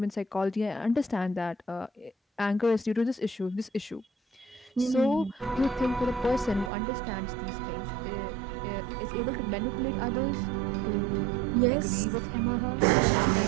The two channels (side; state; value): left; drops out; at 6.7 s